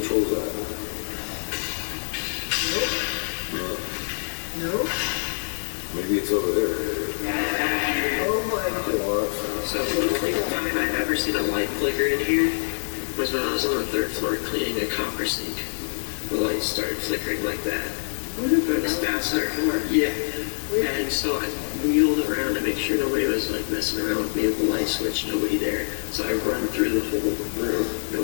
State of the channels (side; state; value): right; silent; digital silence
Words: that? No? Maybe it's over there. Oh my God. So the only time I've ever seen a light flicker in here was when I was on the third floor cleaning a copper sink. The lights started flickering like that. It was faster. Yeah. And so I wheeled around to make sure nobody was like messing around with me with the light switch, nobody there. So I run through the whole room,